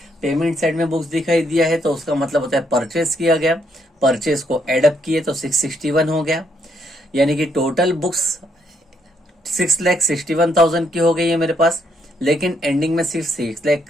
पेमेंट साइड में बुक्स दिखाई दिया है तो उसका मतलब होता है परचेस किया गया, परचेस को एडअप किए तो 661 हो गया। यानी कि टोटल बुक्स 6,61,000 की हो गई है मेरे पास, लेकिन एंडिंग में सिर्फ 6 लाख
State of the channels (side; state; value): both; normal; correlation 0.74